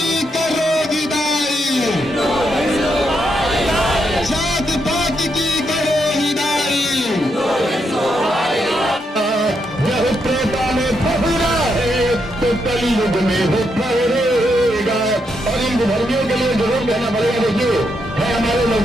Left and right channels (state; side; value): normal; both; correlation 0.80